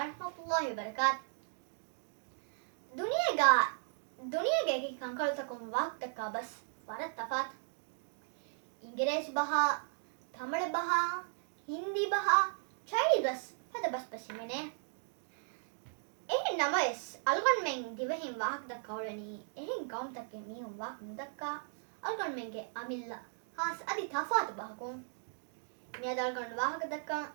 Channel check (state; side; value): silent; left; digital silence